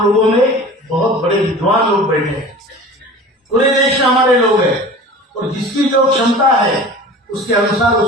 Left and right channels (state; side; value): normal; both; correlation 0.39